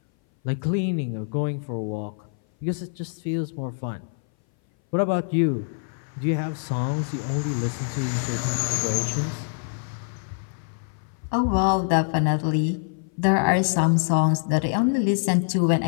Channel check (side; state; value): right; silent; 59 dB below the other